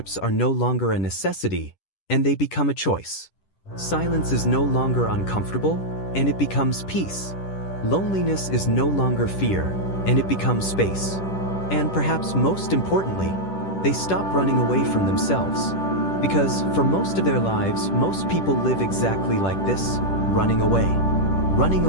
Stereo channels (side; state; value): right; late; 10 ms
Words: are no longer a necessity, and they become a choice. Silence is no longer uncomfortable, and it becomes peace. Loneliness is no longer fear, and it becomes space. And perhaps most importantly, they stop running away from themselves. Because for most of their lives, most people live exactly like this, running away. Running